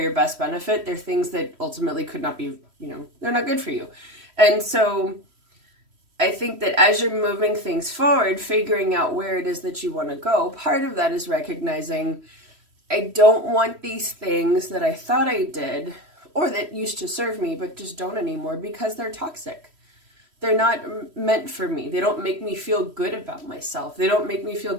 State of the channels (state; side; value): late; left; 3.1 ms